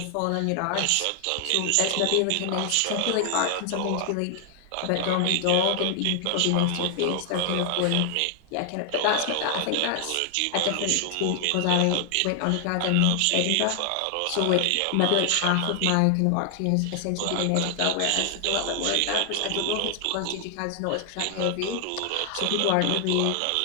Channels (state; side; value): different; both; correlation 0.00